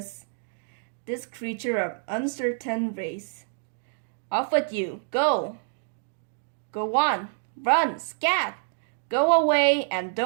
this creature of uncertain race. Off with you, go! Go on, run, scat! Go away and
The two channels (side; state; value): left; silent; digital silence